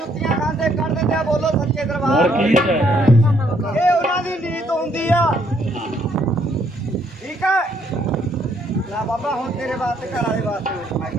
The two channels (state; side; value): normal; both; correlation 0.69